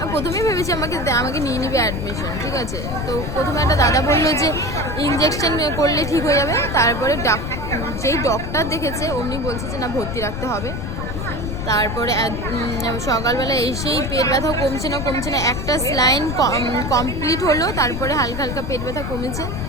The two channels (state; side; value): noise; left; rumble, 5 dB below the sound